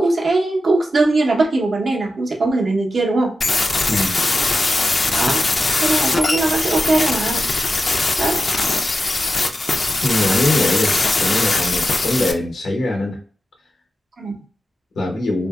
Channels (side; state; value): both; normal; correlation 0.91